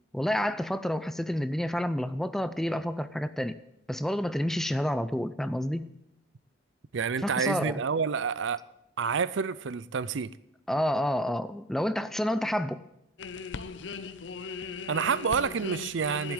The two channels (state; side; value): normal; both; correlation 0.51